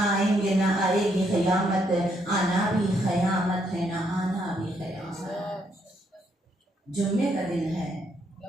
آئیں گے نہ آئے گی قیامت. آنا بھی قیامت ہے نہ آنا بھی قیامت. جمعے کا دن ہے.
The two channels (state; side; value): normal; both; correlation 0.74